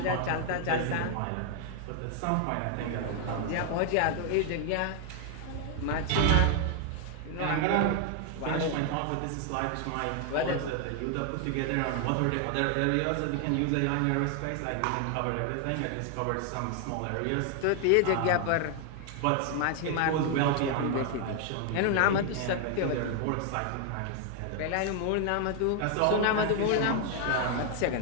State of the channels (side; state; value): both; different; correlation 0.00